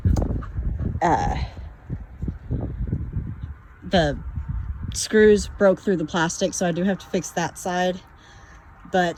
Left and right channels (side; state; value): both; identical; correlation 1.00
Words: the screws broke through the plastic, so I do have to fix that side.